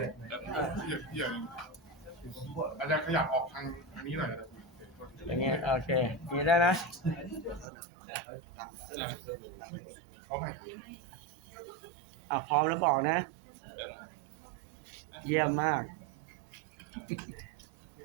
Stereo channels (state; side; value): drops out; left; at 7.7 s